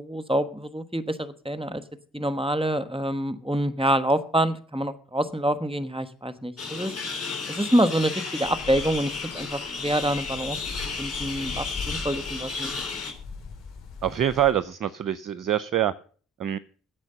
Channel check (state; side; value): normal; both; correlation 0.64